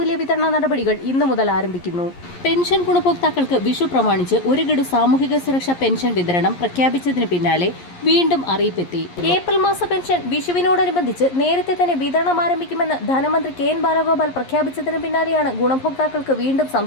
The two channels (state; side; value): late; right; 11 ms